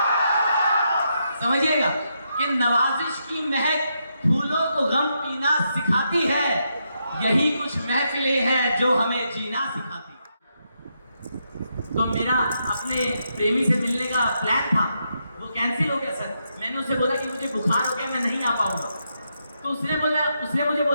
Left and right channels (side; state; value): both; inverted; correlation -0.81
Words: समझिएगा कि नवाजिश की महक फूलों को गम पीना सिखाती है। यही कुछ महफिलें हैं जो हमें जीना सिखाती। तो मेरा अपने प्रेमी से मिलने का प्लान था, वो कैंसिल हो गया सर। मैंने उसे बोला कि मुझे बुखार हो गया, मैं नहीं आ पाऊंगा। तो उसने मुझे